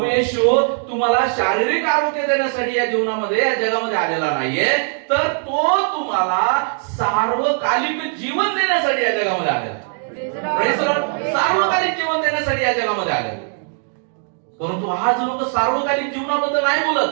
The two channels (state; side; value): silent; left; 57 dB below the other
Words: येशू तुम्हाला शारीरिक आरोग्य देण्यासाठी या जीवनामध्ये या जगामध्ये आलेला नाहीये, तर तो तुम्हाला सार्वकालिक जीवन देण्यासाठी या जगामध्ये आलेला. Praise the Lord. सार्वकालिक जीवन देण्यासाठी या जगामध्ये आलेला. परंतु आज लोक सार्वकालिक जीवनाबद्दल नाही